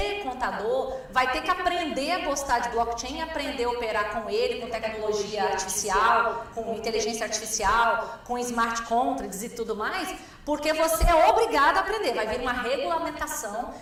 contador, vai ter que aprender a gostar de blockchain, aprender a operar com ele, com tecnologia artificial, com inteligência artificial, com smart contracts e tudo mais, porque você é obrigado a aprender. Vai vir uma regulamentação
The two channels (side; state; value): both; identical; correlation 1.00